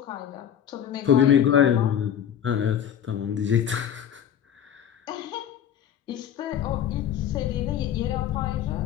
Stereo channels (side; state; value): right; quieter; 9.4 dB